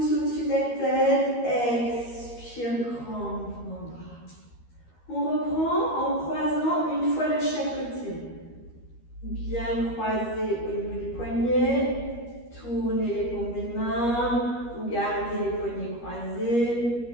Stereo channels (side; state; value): right; late; 13 ms